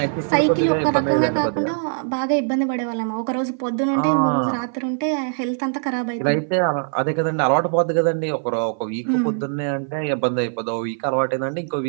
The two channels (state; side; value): silent; left; 55 dB below the other